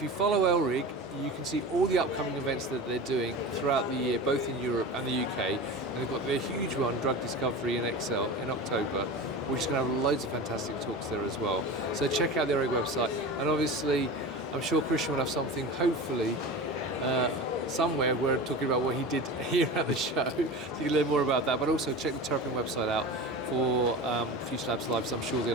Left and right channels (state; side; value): normal; both; correlation 0.31